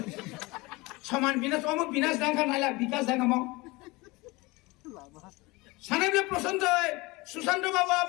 समान विनाश ओम विनाश दंगा नाला विकास दंगम सानेबले प्रसन्न হয় সুশান্ত বাবু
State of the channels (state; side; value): quieter; right; 23.4 dB